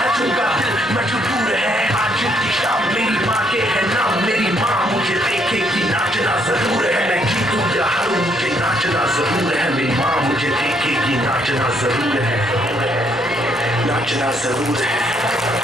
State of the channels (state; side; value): normal; both; correlation 0.70